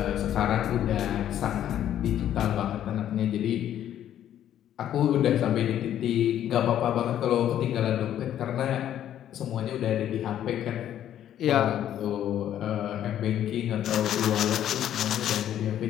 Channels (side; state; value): right; quieter; 11.0 dB